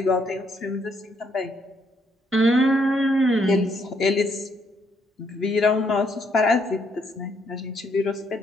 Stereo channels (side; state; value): both; normal; correlation 0.72